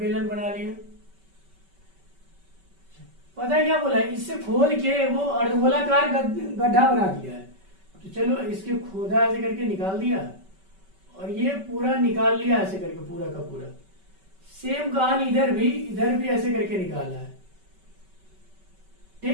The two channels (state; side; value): late; left; 5.2 ms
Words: बना लिया। पता है क्या बोला है, इससे खोद के वो अर्धगोलाकार गड्ढा बना दिया है। तो चलो इसके खोदा ऐसे करके निकाल दिया और ये पूरा निकाल लिया ऐसे करके पूरा का पूरा। सेम कहानी इधर भी ऐसे करके निकाला है,